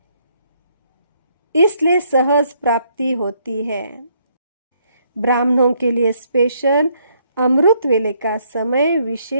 इसलिए सहज प्राप्ति होती है। ब्राह्मणों के लिए स्पेशल अमृत वेले का समय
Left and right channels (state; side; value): inverted; both; correlation -0.70